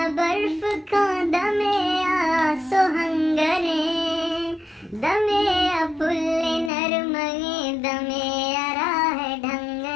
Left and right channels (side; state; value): right; drops out; at 6.7 s